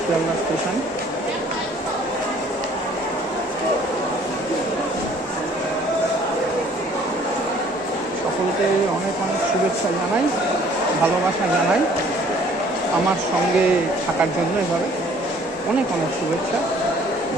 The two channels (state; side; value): normal; both; correlation 0.56